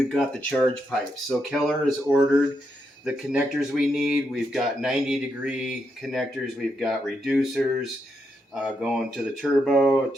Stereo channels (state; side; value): normal; both; correlation 0.82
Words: got the charge pipes. So Keller has ordered the connectors we need. We've got 90-degree connectors. We've got reducers going to the turbo,